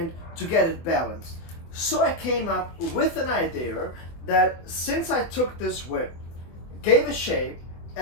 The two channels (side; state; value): right; late; 24 ms